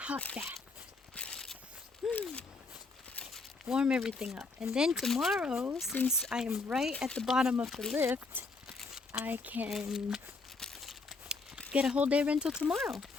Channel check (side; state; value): right; quieter; 3.9 dB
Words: bath. Warm everything up. And then tomorrow, since I am right at the bottom of the lift, I can get a whole day rental tomorrow.